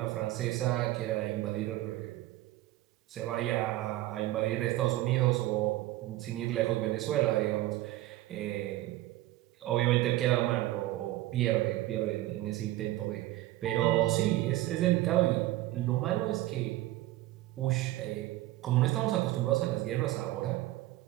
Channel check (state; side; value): quieter; left; 16.3 dB